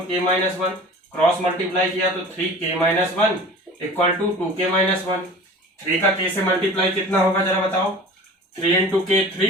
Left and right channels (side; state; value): both; normal; correlation 0.41